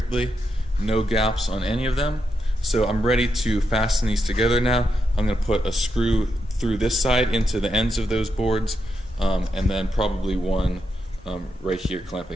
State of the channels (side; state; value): both; normal; correlation 0.84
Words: No gaps on any of them. So I'm ready to fasten these together now. I'm going to put a screw through this side into the ends of those boards, and then probably one right here